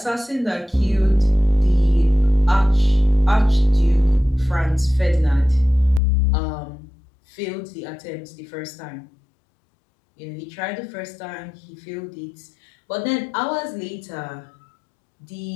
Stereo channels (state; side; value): drops out; right; at 6.0 s